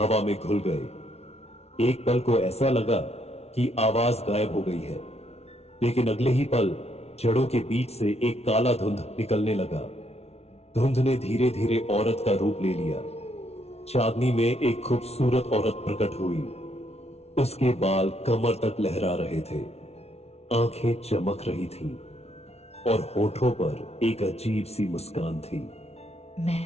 में घुल गए। एक पल को ऐसा लगा कि आवाज गायब हो गई है, लेकिन अगले ही पल जड़ों के बीच से एक काला धुंध निकलने लगा। धुंध ने धीरे धीरे औरत का रूप ले लिया। चांदनी में एक खूबसूरत औरत प्रकट हुई। उसके बाल कमर तक लहरा रहे थे, आंखें चमक रही थीं और होठों पर एक अजीब सी मुस्कान थी।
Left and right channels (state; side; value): late; right; 0.31 ms